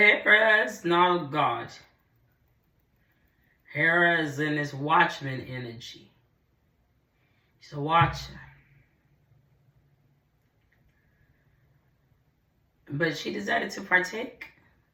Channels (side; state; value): both; identical; correlation 1.00